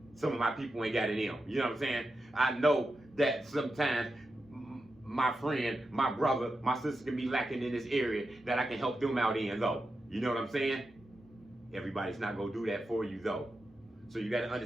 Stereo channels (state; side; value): normal; both; correlation 0.89